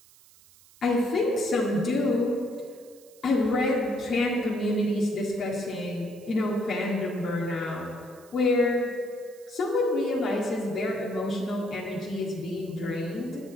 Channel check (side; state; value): right; noise; hiss, 25 dB below the sound